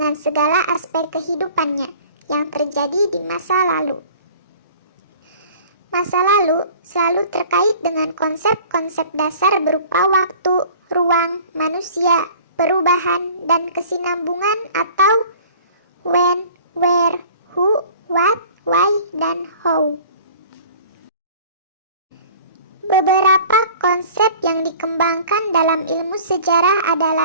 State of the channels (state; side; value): inverted; both; correlation -0.47